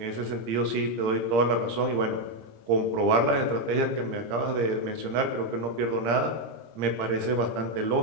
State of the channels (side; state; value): left; late; 17 ms